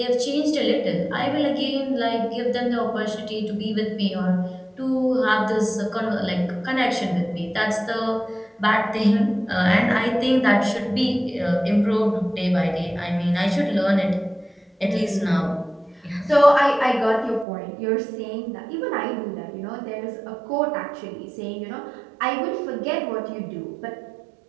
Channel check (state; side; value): drops out; left; at 17.4 s